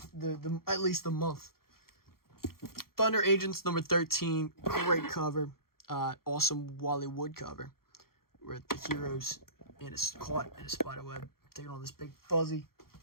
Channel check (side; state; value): right; late; 0.93 ms